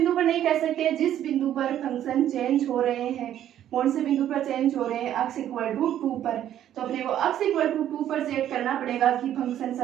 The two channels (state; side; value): quieter; left; 11.2 dB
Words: पर नहीं कह सकते, जिस बिंदु पर फंक्शन चेंज हो रहे हैं। कौन से बिंदु पर चेंज हो रहे हैं, x इक्वल टू 2 पर। तो अपने को x इक्वल टू 2 पर चेक करना पड़ेगा कि फंक्शन